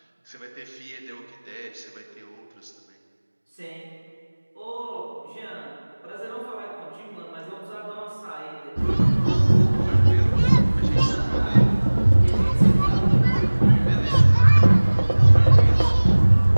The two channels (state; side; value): inverted; both; correlation -1.00